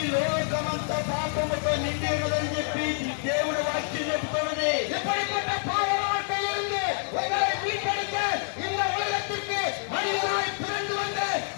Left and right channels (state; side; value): silent; right; digital silence